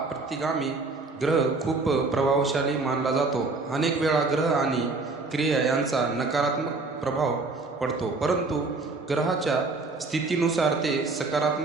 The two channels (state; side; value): quieter; left; 3.7 dB